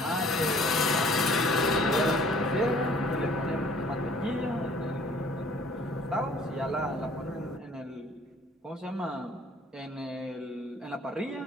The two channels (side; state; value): both; normal; correlation 0.54